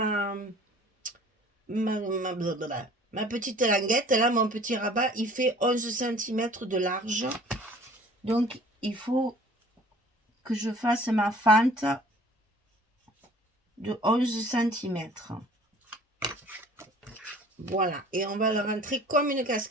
petite languette, là, mon petit rabat, il fait 11 cm de large. Donc, il faut que je fasse ma fente de 11 cm. Voilà, et on va le rentrer comme une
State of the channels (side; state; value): both; normal; correlation 0.50